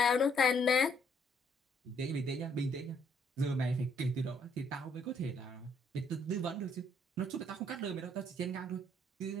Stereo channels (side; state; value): both; normal; correlation 0.68